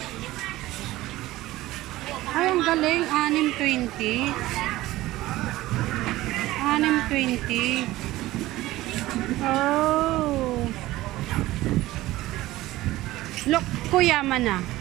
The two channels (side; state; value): left; quieter; 17.1 dB